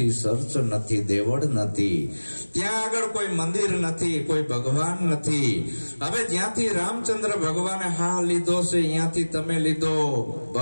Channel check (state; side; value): inverted; both; correlation -1.00